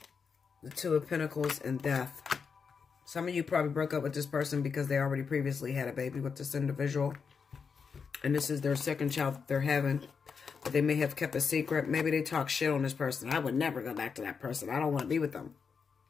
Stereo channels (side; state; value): right; quieter; 5.8 dB